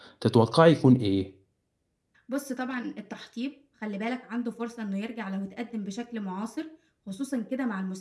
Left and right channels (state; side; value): identical; both; correlation 1.00